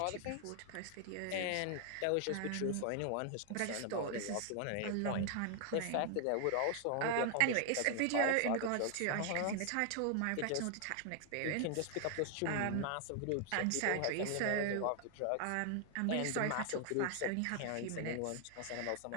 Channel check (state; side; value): different; both; correlation 0.00